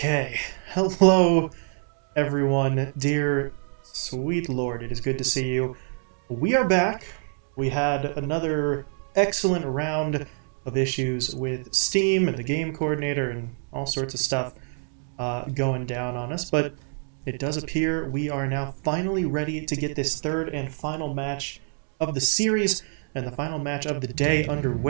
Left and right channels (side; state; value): left; silent; 55 dB below the other